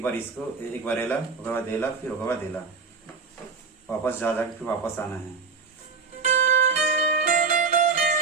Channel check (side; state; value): left; quieter; 4.8 dB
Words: बार इसको एक बार एला, उसके बाद देला, फिर उसके बाद देला, वापस जा जाके फिर वापस आना है।